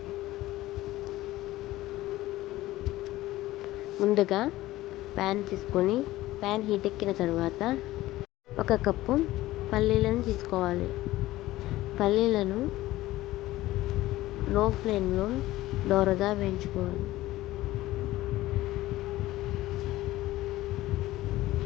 ముందుగా ప్యాన్ తీసుకొని ప్యాన్ హీట్ ఎక్కిన తర్వాత 1 కప్పు పల్లీలను తీసుకోవాలి. పల్లీలను లో ఫ్లేమ్లో దోరగా వేయించుకోవాలి.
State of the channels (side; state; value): right; quieter; 16.6 dB